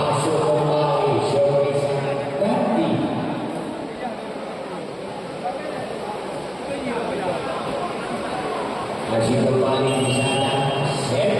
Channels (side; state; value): both; identical; correlation 1.00